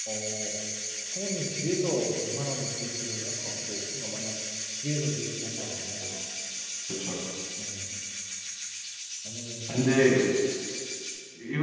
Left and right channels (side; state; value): both; identical; correlation 1.00